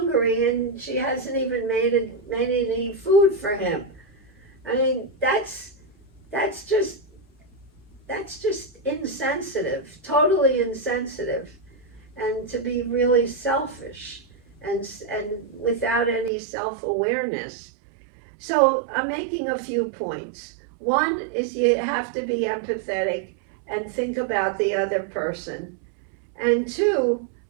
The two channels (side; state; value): left; drops out; at 16.3 s